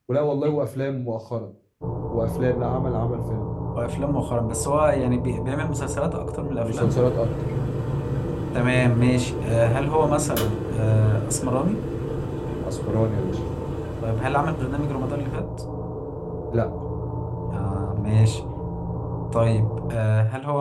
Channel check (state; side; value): identical; both; correlation 1.00